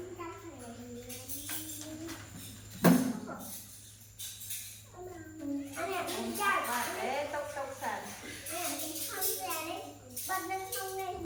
Anh em đi chạy và để tốc sàn Anh em đi không ra đấy Bật lên không lên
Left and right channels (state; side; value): identical; both; correlation 1.00